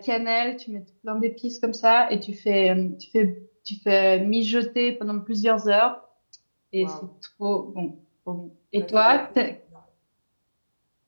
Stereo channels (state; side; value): inverted; both; correlation -1.00